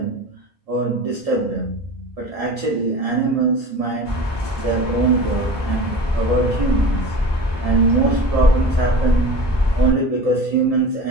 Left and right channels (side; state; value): both; normal; correlation 0.36